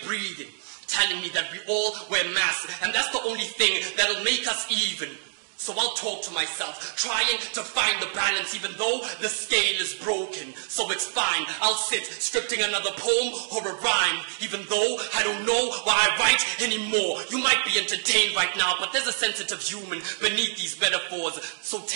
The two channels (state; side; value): silent; left; digital silence